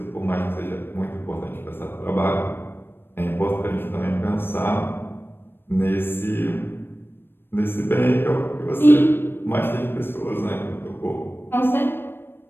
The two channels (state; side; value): late; right; 0.10 ms